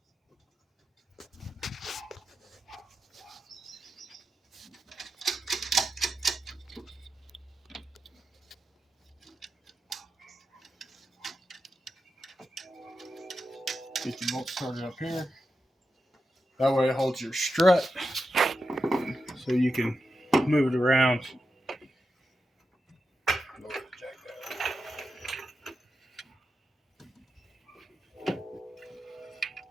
Get your bolt started up here. That way it holds your strut so you can move it around.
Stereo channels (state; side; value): normal; both; correlation 0.89